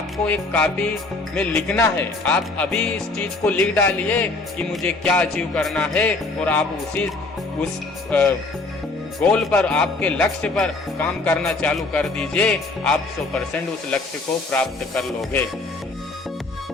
एक कॉपी में लिखना है, आप अभी इस चीज को लिख डालिए कि मुझे क्या अचीव करना है और आप उस गोल पर, आपके लक्ष्य पर काम करना चालू कर दीजिए। आप 100% उस लक्ष्य को प्राप्त कर लोगे।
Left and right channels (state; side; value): quieter; right; 3.4 dB